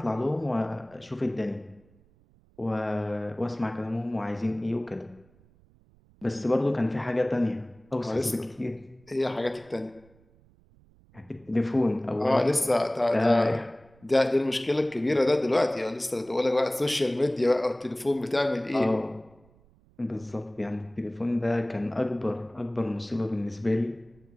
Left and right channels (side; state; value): right; noise; rumble, 29 dB below the sound